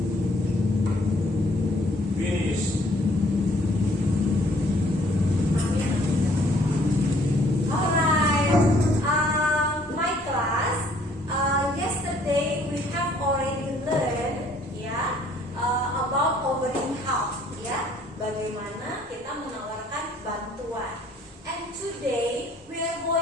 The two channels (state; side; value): normal; both; correlation 0.61